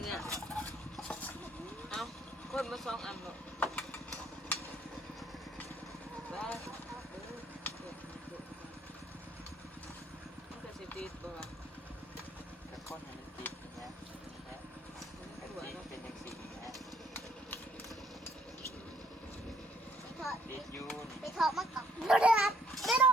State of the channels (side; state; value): both; normal; correlation 0.67